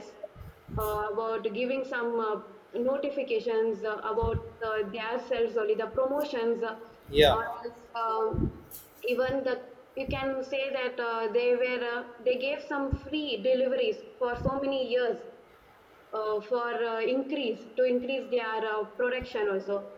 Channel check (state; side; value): identical; both; correlation 1.00